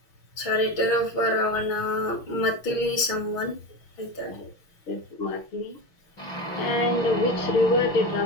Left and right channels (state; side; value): late; right; 6.1 ms